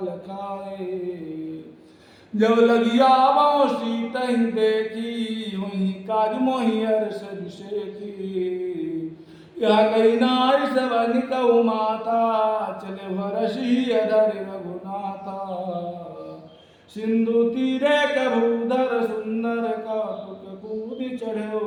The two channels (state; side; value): identical; both; correlation 1.00